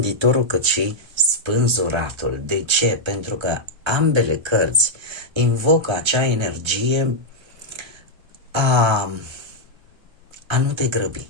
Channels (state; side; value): late; left; 1.3 ms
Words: cât și spânzuratul. De ce? Pentru că ambele cărți invocă acea energie a nu te grăbi,